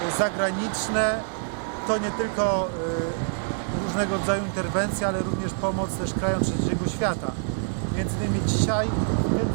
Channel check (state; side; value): silent; left; 61 dB below the other